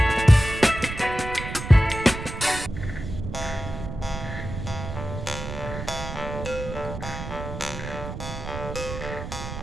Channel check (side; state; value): right; noise; rumble, 8 dB below the sound